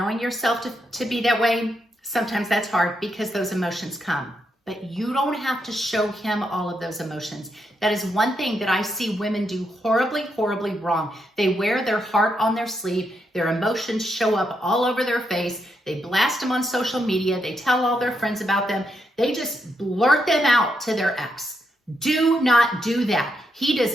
yourself to be that way, sometimes that's hard because those emotions come. But you don't have to show him all of those emotions. That is one thing that I see women do horribly, horribly wrong. They wear their heart on their sleeve. Their emotions show up all over their face. They blast them on social media. They tell all their friends about them. They just blurt them out to their ex. Do not do that. He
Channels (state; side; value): normal; both; correlation 0.81